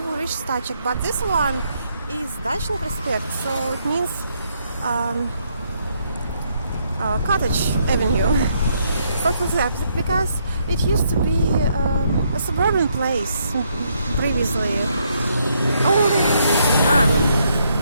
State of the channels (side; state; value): both; inverted; correlation -0.74